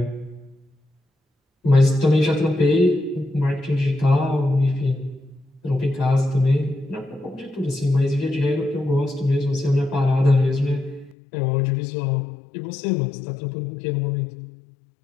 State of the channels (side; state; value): right; drops out; at 11.2 s